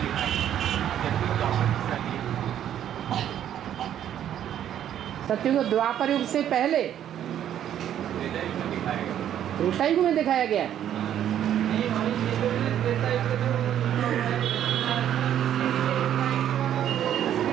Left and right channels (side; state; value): left; quieter; 10.5 dB